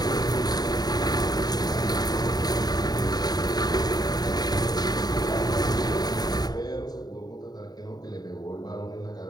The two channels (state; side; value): late; right; 0.19 ms